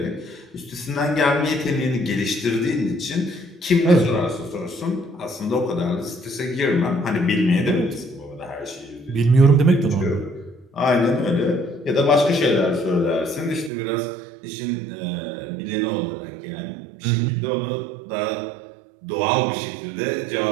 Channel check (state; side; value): drops out; left; at 13.7 s